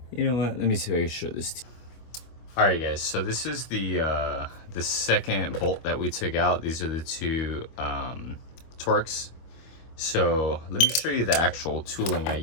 You know what? Let me see if I can show this to you. All right, guys. So this is the second bolt that we took out. These are the two Torx. So let me show you the actual tooling I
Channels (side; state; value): right; late; 25 ms